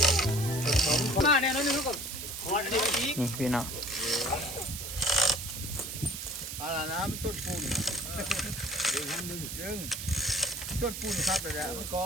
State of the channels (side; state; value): right; noise; hiss, 7 dB below the sound